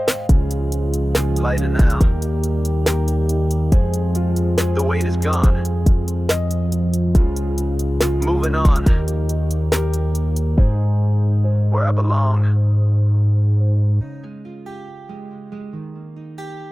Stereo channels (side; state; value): both; normal; correlation 0.97